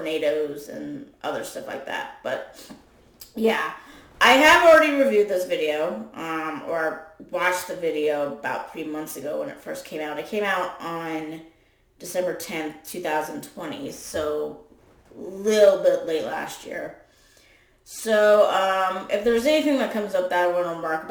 and other stuff like that. But, yeah. I have already reviewed this video, or watched the video about 3 months ago when it first came out. It came out on December 10th, 2020, so a little bit late last year. So, if there's anything that comes up that I want to remark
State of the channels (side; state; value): both; identical; correlation 1.00